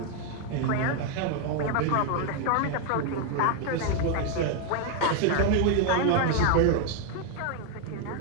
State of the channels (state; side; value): different; both; correlation 0.01